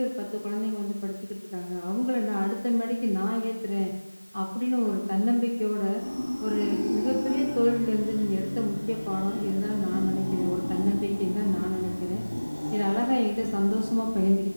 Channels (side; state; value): both; inverted; correlation -1.00